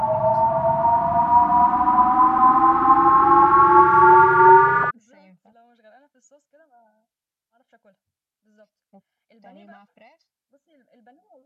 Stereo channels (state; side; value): identical; both; correlation 1.00